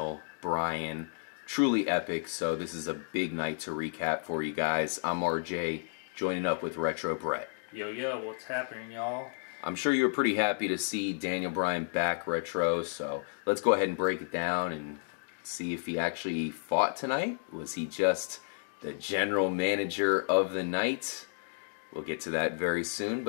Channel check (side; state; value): right; silent; digital silence